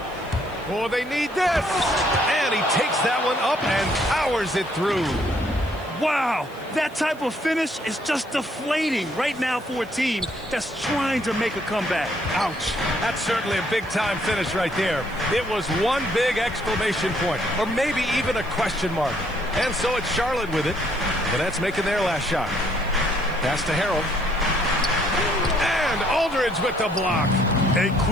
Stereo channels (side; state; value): right; noise; hiss, 26 dB below the sound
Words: Oh, they need this. And he takes that one up and powers it through. Wow, that type of finish is just deflating right now for a team that's trying to make a comeback. Ouch. That's certainly a big-time finish right there. It was one big exclamation point, or maybe even a question mark. And so it's Charlotte with it. The Nets making their last shot. Pass to Harrell. And Aldridge with the block. A